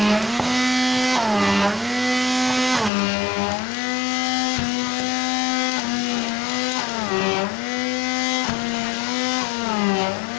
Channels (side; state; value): right; drops out; at 2.9 s